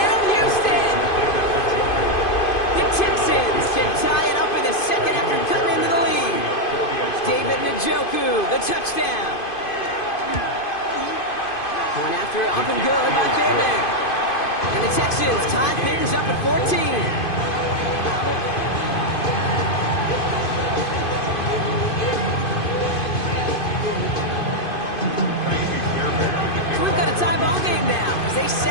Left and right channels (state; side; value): late; right; 2.5 ms